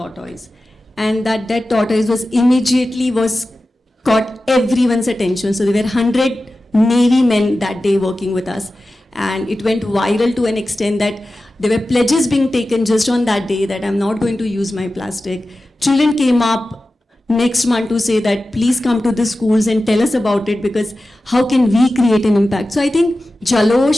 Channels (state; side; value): normal; both; correlation 0.94